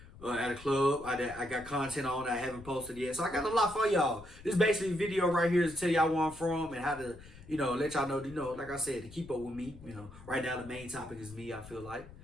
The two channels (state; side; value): noise; left; rumble, 18 dB below the sound